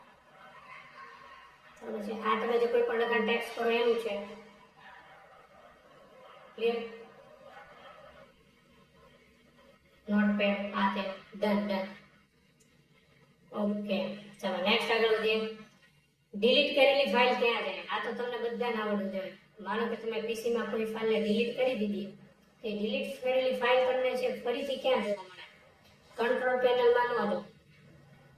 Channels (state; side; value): identical; both; correlation 1.00